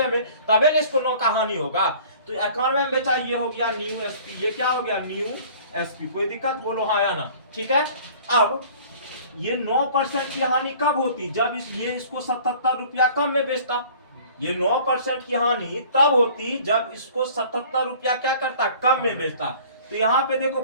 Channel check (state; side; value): inverted; both; correlation -0.49